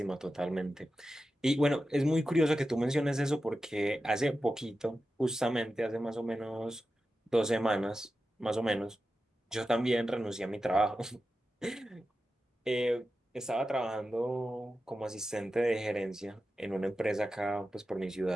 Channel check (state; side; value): normal; both; correlation 0.92